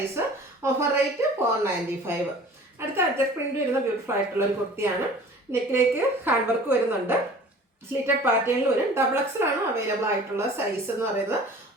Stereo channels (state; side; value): normal; both; correlation 0.45